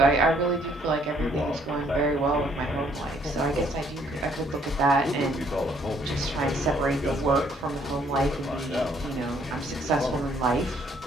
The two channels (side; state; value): both; normal; correlation 0.65